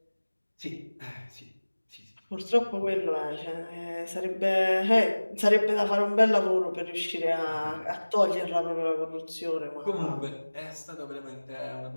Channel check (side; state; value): both; inverted; correlation -1.00